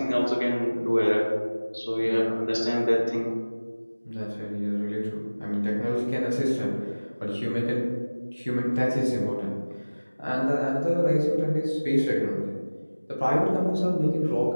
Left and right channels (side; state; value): both; inverted; correlation -1.00